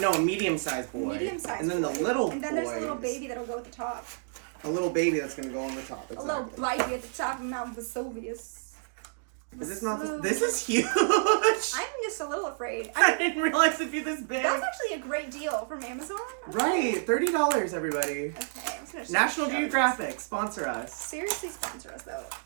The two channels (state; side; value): silent; left; digital silence